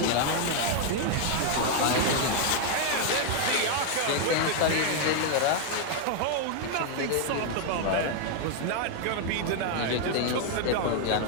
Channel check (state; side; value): different; both; correlation 0.00